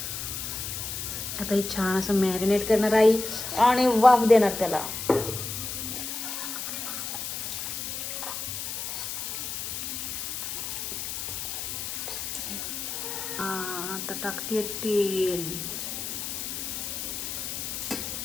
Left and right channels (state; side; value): noise; left; hiss, 5 dB below the sound